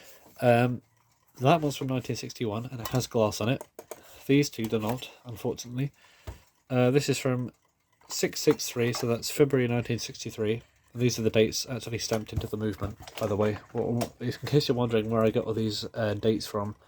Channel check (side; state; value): both; identical; correlation 1.00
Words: That one's from 1961 and it has glass on it. These two do not, unfortunately. This is from 663, so that's February 1963. These are the dates actually stamped into the movement, by the way. In case you're wondering where I got all these dates from,